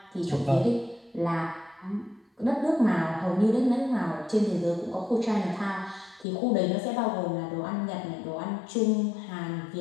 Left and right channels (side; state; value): right; drops out; at 6.2 s